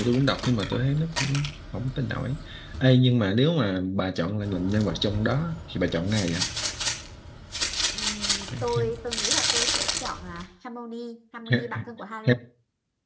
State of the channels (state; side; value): identical; both; correlation 1.00